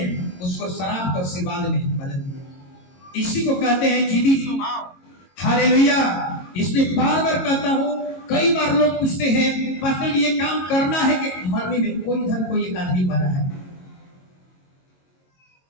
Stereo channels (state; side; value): late; right; 22 ms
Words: उसको शराब को आशीर्वाद में बदल दिया। इसी को कहते हैं जिदी स्वभाव। हालेलुया। इसलिए बार कहता हूं, कई बार लोग पूछते हैं पास्टर जी ये काम करना है कि मरने में कोई एक आदमी मरा है,